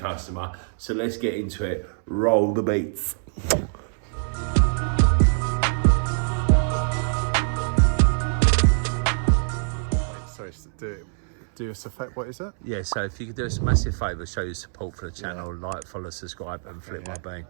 So let's get into it. Roll the beats. Do us a favour, what is it? Yeah, so if you could do us a massive favour, show your support for the channel, like, follow, subscribe and flip my bean.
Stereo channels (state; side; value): silent; left; 62 dB below the other